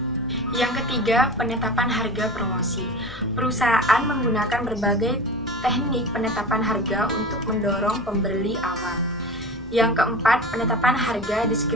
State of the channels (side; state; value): left; noise; hum, 17 dB below the sound